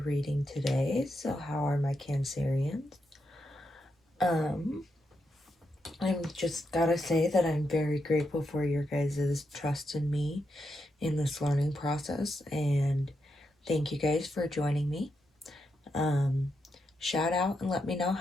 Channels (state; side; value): normal; both; correlation 0.84